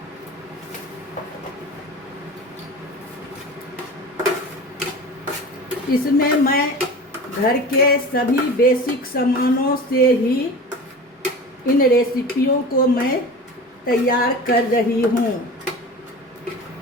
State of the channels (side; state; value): both; normal; correlation 0.35